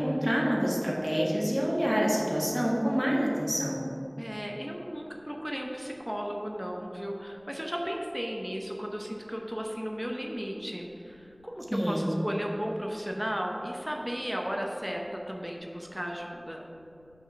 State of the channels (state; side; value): noise; left; rumble, 30 dB below the sound